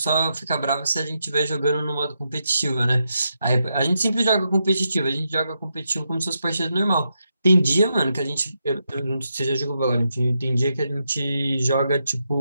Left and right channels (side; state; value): both; inverted; correlation -0.84